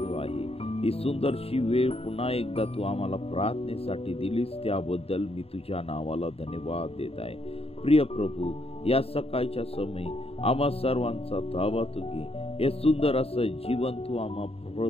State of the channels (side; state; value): right; late; 0.29 ms